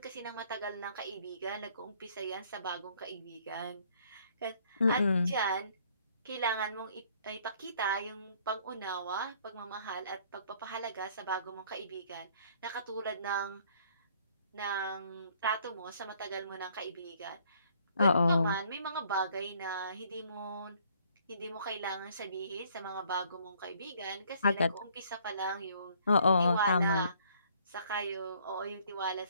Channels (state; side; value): inverted; both; correlation -0.62